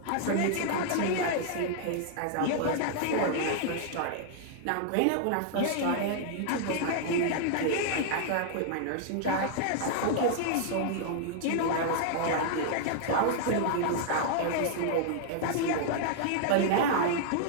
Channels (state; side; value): different; both; correlation -0.01